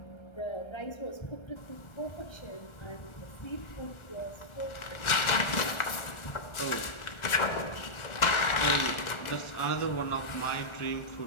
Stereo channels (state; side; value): late; right; 1.4 ms